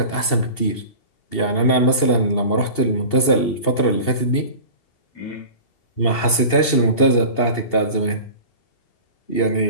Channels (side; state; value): right; late; 2.7 ms